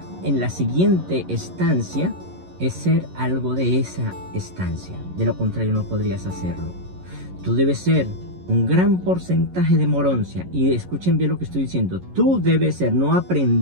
en la siguiente estancia es ser algo de esa estancia. De lo contrario no podrías hacerlo. Tú debes ser un gran porcentaje de moroncia. Y escuchen bien lo que estoy diciendo. Tú debes ser, no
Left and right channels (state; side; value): late; left; 11 ms